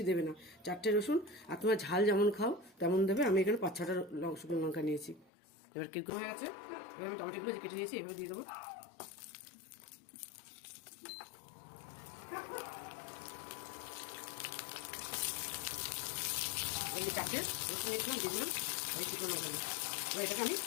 দেবে না, 4টে রসুন। আর তোমার ঝাল যেমন খাও তেমন দেবে। আমি এখানে 5-6টা শুকনো লঙ্কা নিয়েছি। এবার কি হয়ে গেছে, এবার আমি টমেটোগুলো কেটে নিয়েছি, এভাবে দিয়ে দেবো। এই যে 4টে রসুন নিয়েছিলাম, দিয়ে দিলাম এই শুকনো লঙ্কা। এবার এটাকে আমি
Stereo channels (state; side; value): drops out; right; at 5.3 s